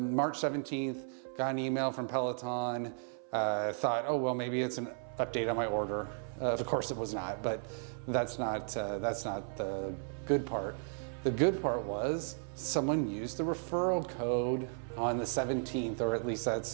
March 17th, got an email from Peloton. Thought, oh, well, maybe it's an update on my order. Of course it was not, but that's not the good part. The good part was someone used the referral code on the 17th, or at least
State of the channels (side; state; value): left; silent; 55 dB below the other